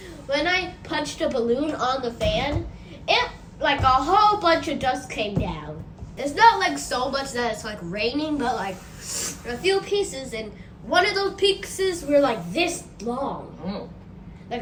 on the fan, it a whole bunch of dust came down. It's not so much that it's raining, but a few pieces, and one of those pieces were this long. Oh.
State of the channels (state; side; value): identical; both; correlation 1.00